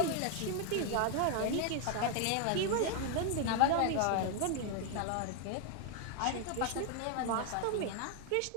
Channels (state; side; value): different; both; correlation 0.01